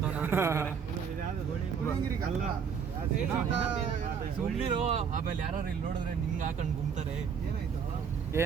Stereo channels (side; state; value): left; quieter; 6.7 dB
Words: ಸುಮ್ಮನಿರೋ. ಆಮೇಲೆ ಯಾರು ಇಲ್ಲಿ ನೋಡಿದ್ರೆ ನಿಂಗೆ ಹಾಕೊಂಡು ಗುಮ್ತಾರೆ.